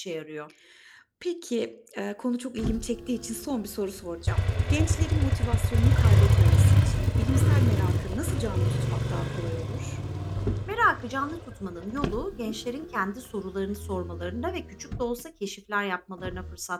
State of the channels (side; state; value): both; identical; correlation 1.00